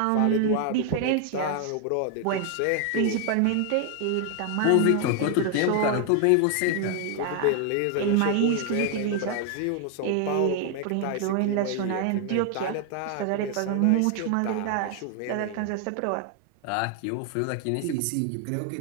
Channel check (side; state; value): both; different; correlation 0.00